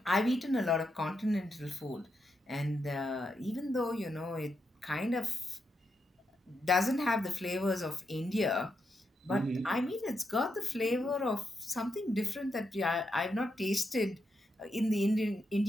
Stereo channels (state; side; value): normal; both; correlation 0.83